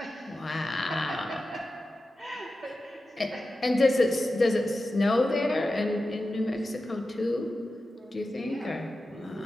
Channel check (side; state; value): both; normal; correlation 0.92